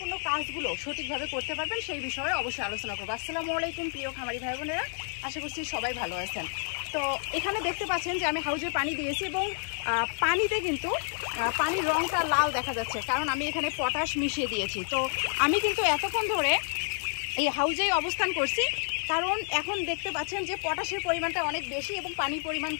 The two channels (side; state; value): right; silent; 58 dB below the other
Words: কাজগুলো সঠিকভাবে করতে পারবেন সেই বিষয়ে অবশ্যই আলোচনা করবো। আসসালামু আলাইকুম প্রিয় খামারি ভাই বোনেরা, আশা করছি সবাই ভালো আছেন। তো এখানে দেখতে পাচ্ছেন যে আমি হাউজে পানি দিয়েছি এবং পানিতে কিন্তু পানির রঙটা লাল দেখা যাচ্ছে, কারণ আমি এখানে পটাশ মিশিয়ে দিয়েছি। তো আমি কিন্তু এতক্ষণ ধরে এই হাউজেই অবস্থান করছি, কারণ এখন দেখতে পাচ্ছেন যে পটাশের পরিমাণটা অনেক বেশি এবং পানির পরিমাণ